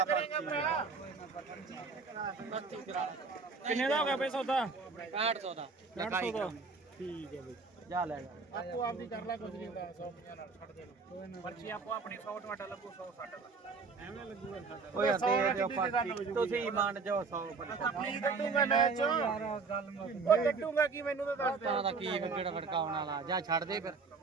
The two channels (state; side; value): quieter; left; 4.6 dB